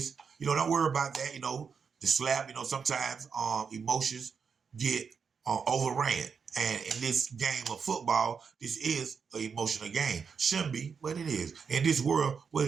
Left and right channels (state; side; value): quieter; left; 6.0 dB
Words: don't worry about that. The slap, sometimes emotions get overran. And in this game of football, this is an emotional game. Shouldn't be, but it is. In this world,